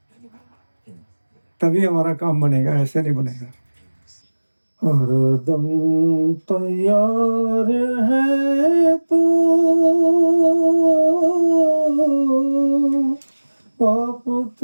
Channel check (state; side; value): inverted; both; correlation -1.00